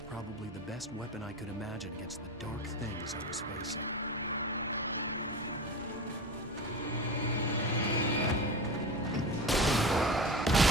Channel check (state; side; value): normal; both; correlation 0.29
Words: the best weapon I could imagine against the dark things I was facing.